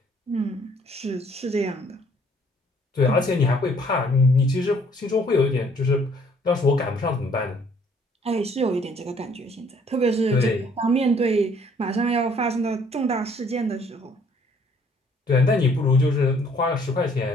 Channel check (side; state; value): both; normal; correlation 0.61